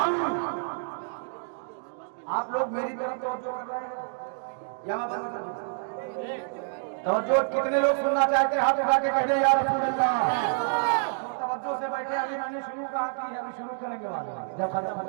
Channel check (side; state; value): left; silent; digital silence